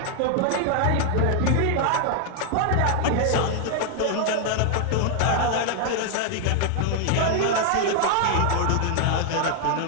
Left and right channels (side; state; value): both; different; correlation 0.00